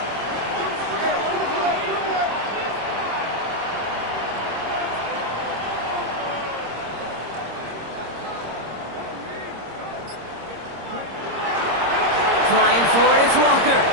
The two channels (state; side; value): late; left; 26 ms